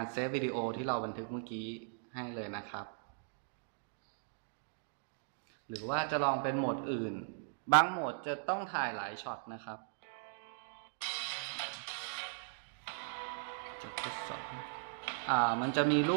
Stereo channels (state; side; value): silent; left; digital silence